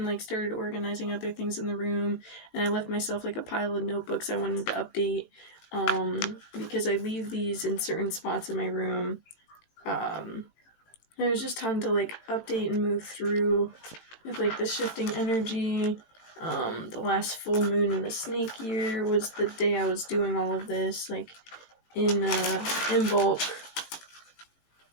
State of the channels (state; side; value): late; right; 18 ms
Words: like started organizing other things in the room, and I left myself like a pile of notebooks I wanted to update. Because I leave these in certain spots in my room. And it was just time to like update and move through with like the shifting energy. The last full moon in the snake year was the day I was doing all of this, like in bulk.